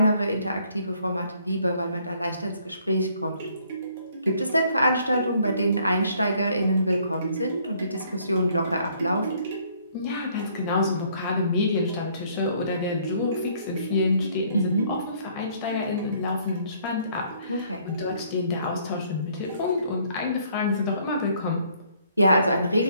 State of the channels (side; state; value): both; inverted; correlation -0.63